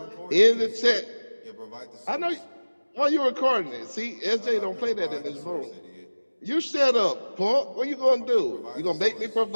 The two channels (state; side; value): inverted; both; correlation -1.00